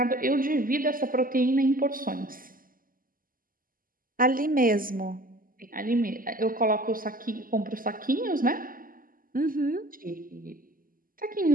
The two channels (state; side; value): late; left; 0.41 ms